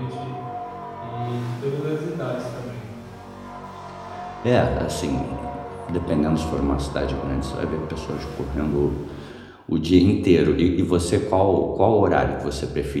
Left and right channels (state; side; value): identical; both; correlation 1.00